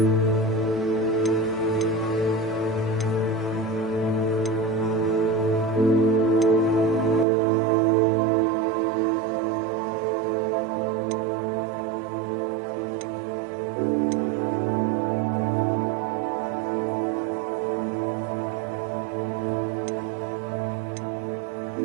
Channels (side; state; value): left; drops out; at 7.2 s